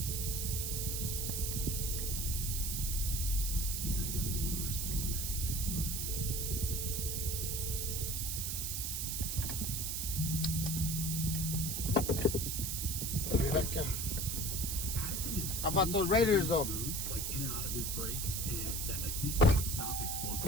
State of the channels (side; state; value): right; noise; hiss, 1 dB below the sound